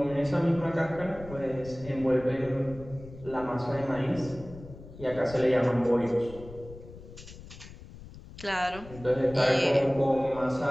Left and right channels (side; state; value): left; noise; rumble, 16 dB below the sound